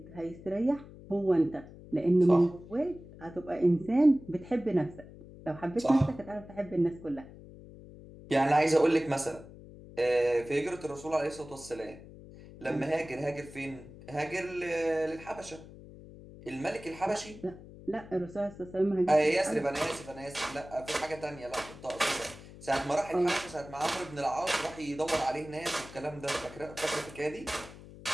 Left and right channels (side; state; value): left; noise; hum, 17 dB below the sound